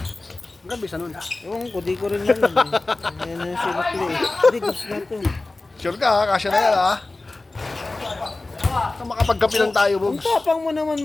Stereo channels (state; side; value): quieter; right; 3.2 dB